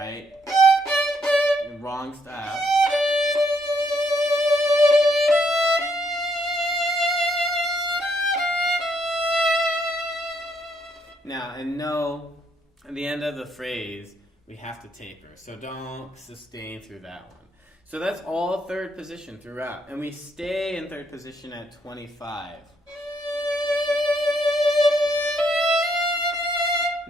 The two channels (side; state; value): both; normal; correlation 0.72